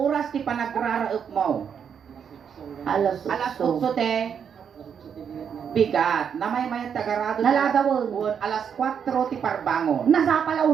ti panagraraep mo. Alas Alas 8. 8 te. Bigat. Namay-mayat tagarado. Nalagawon. Alas 4 ti parbangon. Nasa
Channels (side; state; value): left; quieter; 7.5 dB